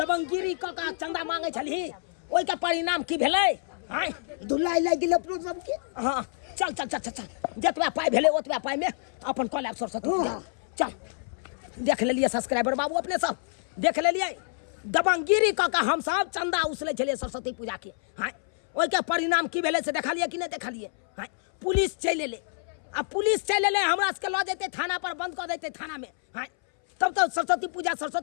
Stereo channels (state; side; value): silent; right; 59 dB below the other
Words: क का चंदा मांगे छली ओइ के परिणाम की भेलै? हाय दुल्ला लाग गेल अपनो सब के। हां चल चल चल चल जतबा पाई भेलै ओतबा पाई में अपन कॉलेज सरस्वती पूजा चल देख लेलिए सब्सक्राइबर बाबू अपने सब देख लेलिए दबंगिरी क का हम सब चंदा उसले छलिए सरस्वती पूजा के। हाय ओइ के परिणाम की भेलै से देखलिए कि नहीं देखलिए? हाय पुलिस चल एले। अब पुलिस चल एले हमरा सबके ल जेते थाना पर बंद कर देते थाना में। हाय तब तो सरस्वती